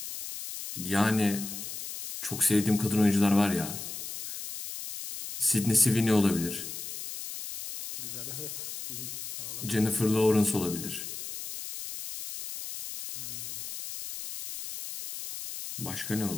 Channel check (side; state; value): left; noise; hiss, 8 dB below the sound